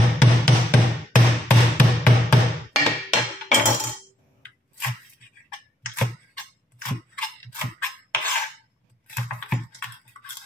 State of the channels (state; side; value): normal; both; correlation 0.75